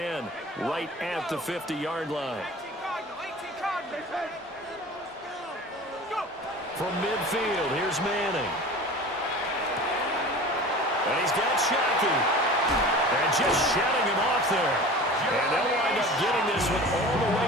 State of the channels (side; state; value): both; normal; correlation 0.38